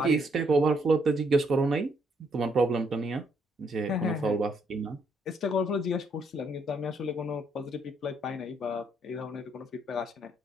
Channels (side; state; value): both; normal; correlation 0.72